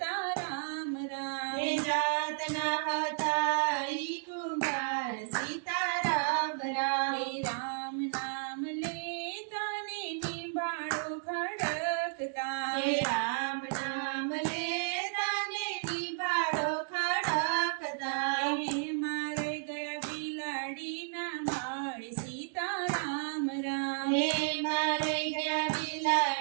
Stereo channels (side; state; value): left; silent; digital silence